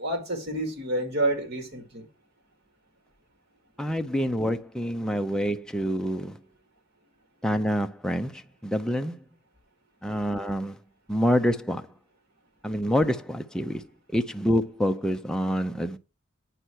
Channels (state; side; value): normal; both; correlation 0.71